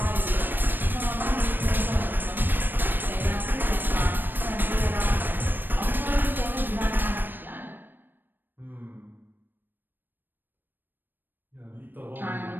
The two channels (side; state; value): left; late; 0.094 ms